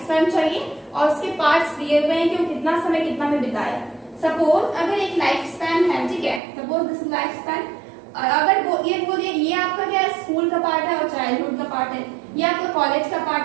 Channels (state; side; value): drops out; left; at 6.4 s